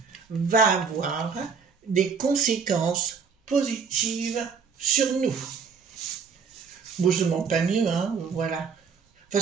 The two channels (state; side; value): quieter; left; 5.9 dB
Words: va avoir des conséquences positives sur nous? Bon, je ne demande pas mieux, hein, voilà. De